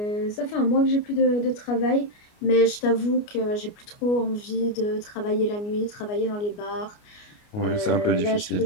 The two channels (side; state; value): right; late; 29 ms